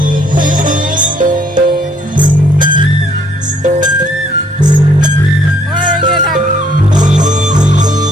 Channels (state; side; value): normal; both; correlation 0.65